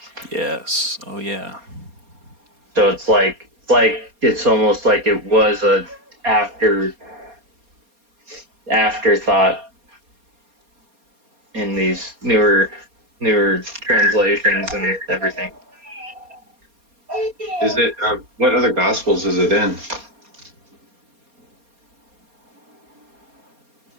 Yes. Oh, yeah. So it's almost like it was a afterthought in these newer translations and everything. Is it? What other gospels is it in?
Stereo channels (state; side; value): late; left; 4.3 ms